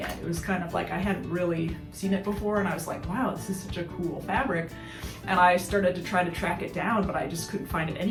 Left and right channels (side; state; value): both; identical; correlation 1.00